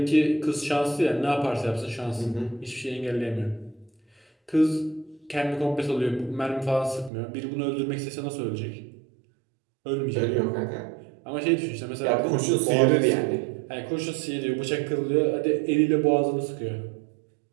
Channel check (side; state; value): left; drops out; at 7.1 s